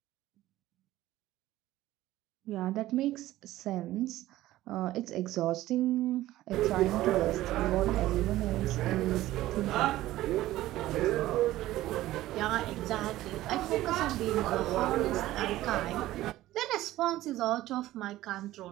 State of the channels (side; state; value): left; quieter; 15.6 dB